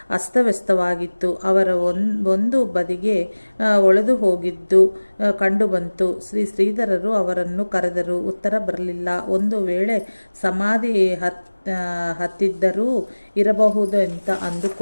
ಅಸ್ತವ್ಯಸ್ತವಾಗಿತ್ತು. ಅವರ ಒಂದು ಬದಿಗೆ ಒಳೆದು ಹೋಗಿದ್ದು ಕಂಡುಬಂತು. ಶ್ರೀ ಶ್ರೀಧರರು ಅವರನ್ನು ಕರೆದರು. ಉತ್ತರ ಬರಲಿಲ್ಲ. ಒಂದು ವೇಳೆ ಸಮಾಧಿ ಹತ್ತಿದ್ದರೂ ಇರಬಹುದು ಅಂತ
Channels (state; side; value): inverted; both; correlation -1.00